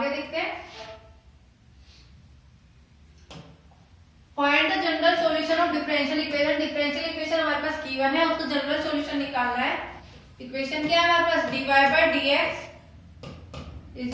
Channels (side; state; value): both; identical; correlation 1.00